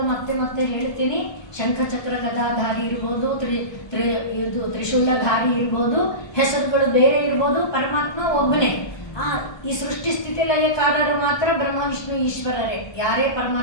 ಮತ್ತೆ ಹೇಳ್ತೀನಿ, ಶಂಖಚಕ್ರ ಗದಾಧಾರಿ ಇರ್ಬೋದು, ತ್ರಿಶೂಲಧಾರಿ ಇರ್ಬೋದು, ಹೆಸರುಗಳು ಬೇರೆ ಇರ್ಬೋದು, ಪರಮಾತ್ಮ ಒಬ್ಬನೇ. ಈ ಸೃಷ್ಟಿ ಸ್ಥಿತಿ ಲಯಕಾರರು ಮಾತ್ರ ಬ್ರಹ್ಮ ವಿಷ್ಣು ಈಶ್ವರರೇ. ಯಾರೇ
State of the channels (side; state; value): right; late; 1.3 ms